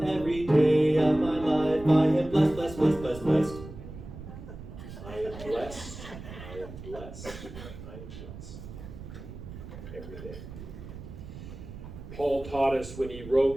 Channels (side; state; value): right; noise; rumble, 13 dB below the sound